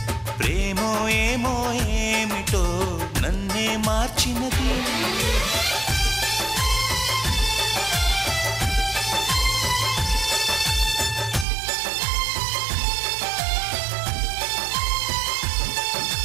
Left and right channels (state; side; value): drops out; left; at 11.5 s